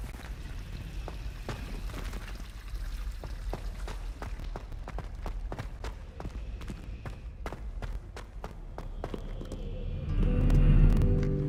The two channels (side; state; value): both; identical; correlation 1.00